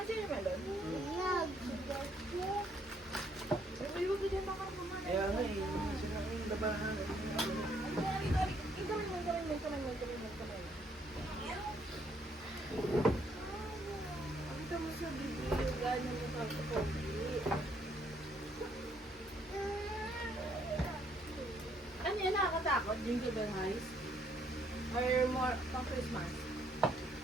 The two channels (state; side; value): normal; both; correlation 0.69